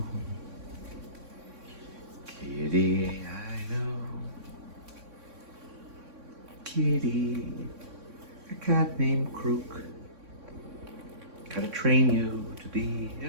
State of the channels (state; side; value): late; left; 3.6 ms